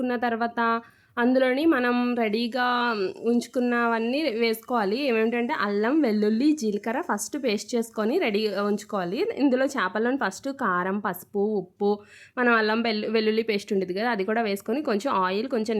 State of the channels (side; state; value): both; identical; correlation 1.00